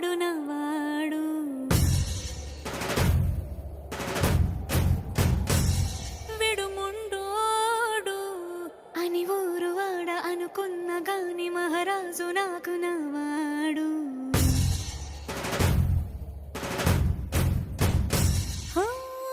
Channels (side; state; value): both; identical; correlation 1.00